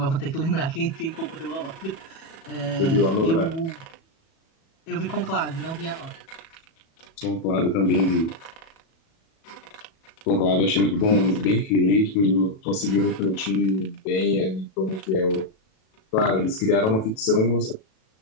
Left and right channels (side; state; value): right; late; 37 ms